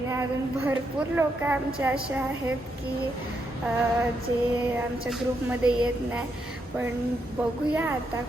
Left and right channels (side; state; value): both; normal; correlation 0.80